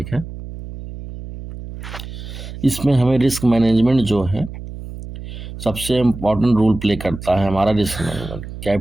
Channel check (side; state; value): right; noise; hum, 11 dB below the sound